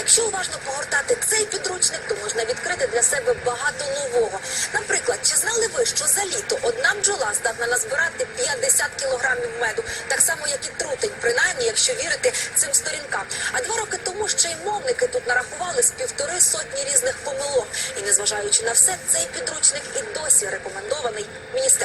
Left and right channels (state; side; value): identical; both; correlation 1.00